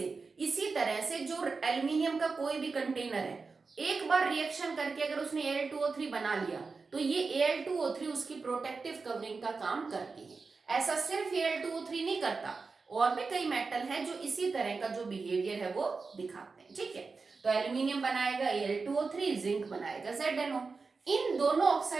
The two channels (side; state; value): left; quieter; 4.4 dB